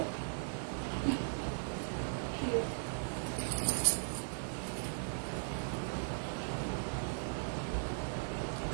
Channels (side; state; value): left; silent; 52 dB below the other